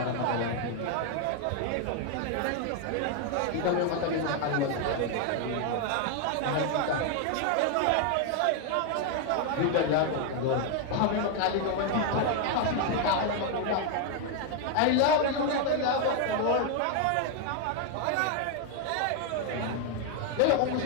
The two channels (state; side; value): different; both; correlation 0.01